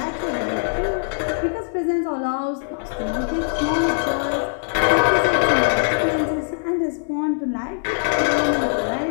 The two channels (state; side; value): silent; right; 64 dB below the other